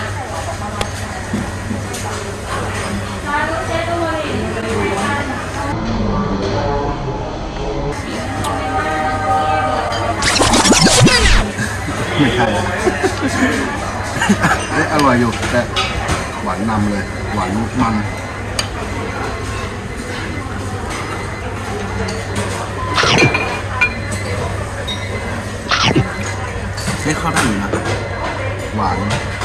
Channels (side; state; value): both; identical; correlation 1.00